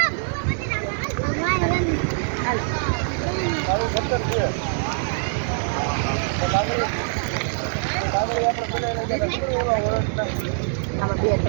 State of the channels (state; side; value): silent; left; digital silence